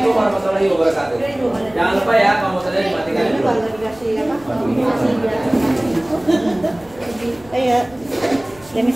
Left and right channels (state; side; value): noise; left; rumble, 24 dB below the sound